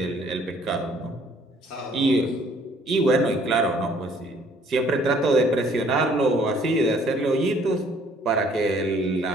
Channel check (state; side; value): normal; both; correlation 0.60